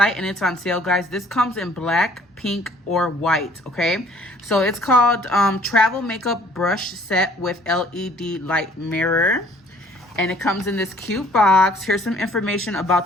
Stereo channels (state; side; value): normal; both; correlation 0.57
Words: and it's on sale, guys. This comes in black, pink, or white, okay? So it's called Travel Makeup Brush Set with LED Light Mirror. And it comes in this cute box. Here's some information about